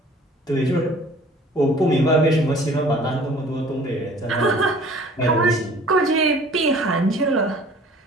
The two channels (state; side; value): normal; both; correlation 0.50